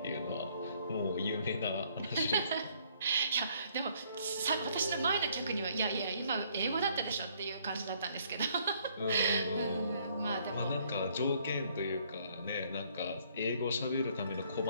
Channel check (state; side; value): inverted; both; correlation -0.65